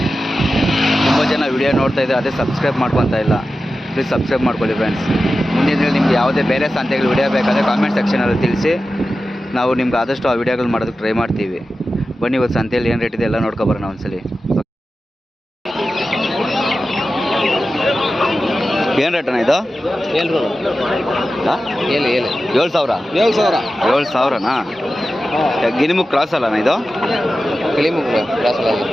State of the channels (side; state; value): both; normal; correlation 0.93